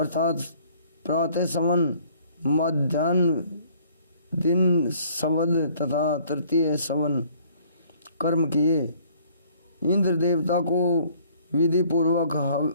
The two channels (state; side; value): inverted; both; correlation -0.59